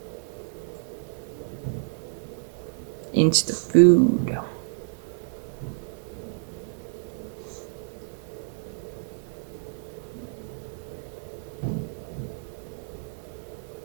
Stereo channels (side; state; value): left; silent; 59 dB below the other